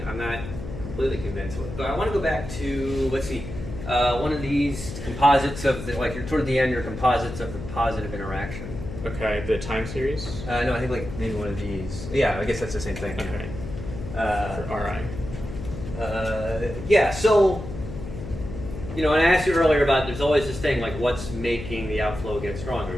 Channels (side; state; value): left; noise; hum, 10 dB below the sound